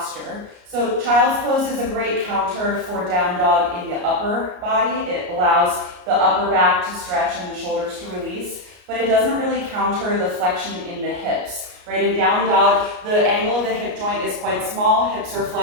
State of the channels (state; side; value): late; left; 33 ms